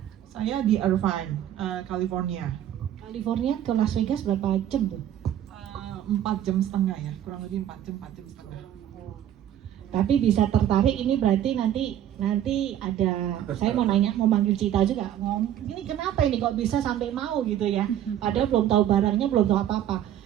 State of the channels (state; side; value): quieter; left; 11.1 dB